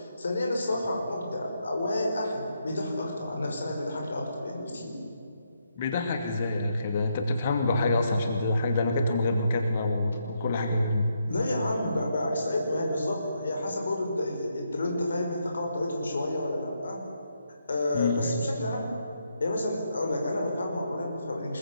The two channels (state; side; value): inverted; both; correlation -0.79